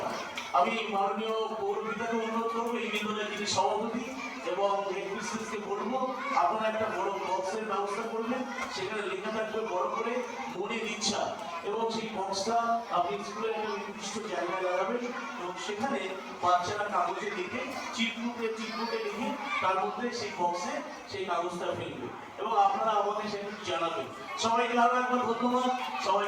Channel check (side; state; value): both; identical; correlation 1.00